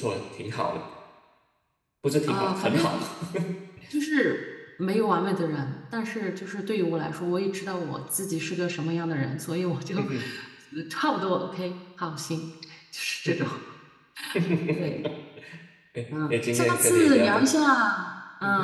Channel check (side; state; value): both; identical; correlation 1.00